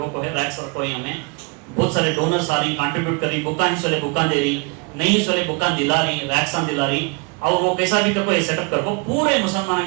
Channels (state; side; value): quieter; left; 30.8 dB